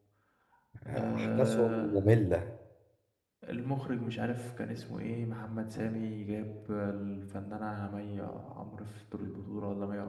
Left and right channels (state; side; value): identical; both; correlation 1.00